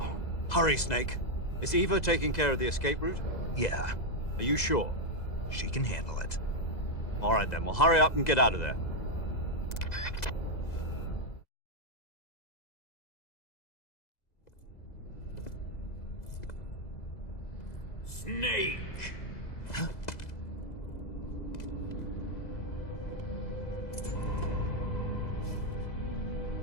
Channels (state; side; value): late; right; 2.0 ms